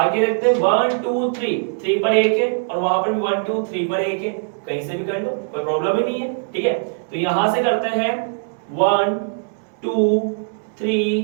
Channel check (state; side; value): silent; left; digital silence